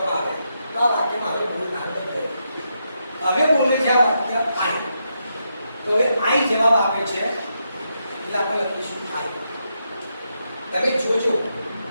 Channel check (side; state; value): both; inverted; correlation -0.83